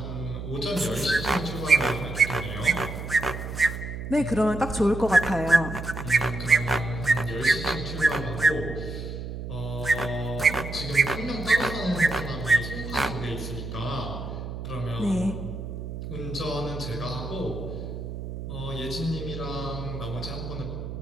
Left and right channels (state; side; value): noise; right; hum, 7 dB below the sound